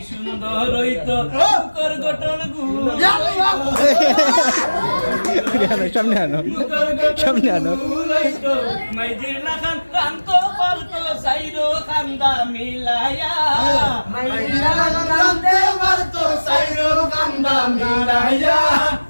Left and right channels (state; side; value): inverted; both; correlation -1.00